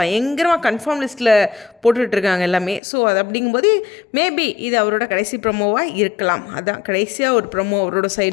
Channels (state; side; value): drops out; right; at 2.8 s